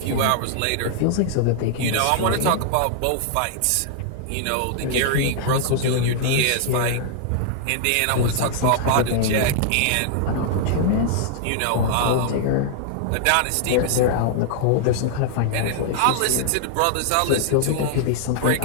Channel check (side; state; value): both; different; correlation -0.01